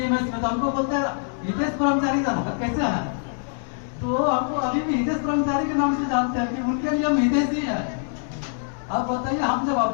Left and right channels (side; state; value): right; silent; digital silence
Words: में, तो हमको बोलते हैं हितेश ब्रह्मचारी कैसे है, तो हमको अभी भी हितेश ब्रह्मचारी के नाम से जानते हैं कि उनके लिए हम हितेश ही है। अब बताइए हम जब